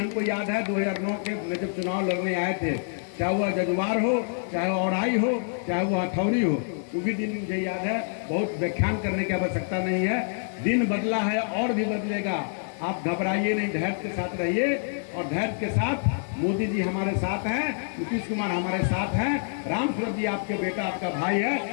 याद है 2009 के में जब चुनाव लड़ने आए थे, चाहे वह जजुआर हो, चाहे वह औराई हो, चाहे वह हथौड़ी हो, वो भी दिन मुझे याद है। बहुत व्याख्यान करने की आवश्यकता नहीं है, दिन बदला है और भी बदलेगा। आप घबराइए नहीं, धैर्य के साथ रहिए और धैर्य के साथ मोदी जी हमारे साथ हैं, नीतीश कुमार हमारे साथ हैं, राम सूरत जी आपके बेटा, आपका भाई है।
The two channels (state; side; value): silent; right; 59 dB below the other